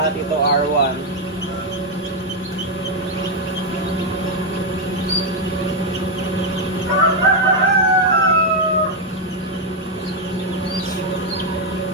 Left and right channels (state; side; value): normal; both; correlation 0.01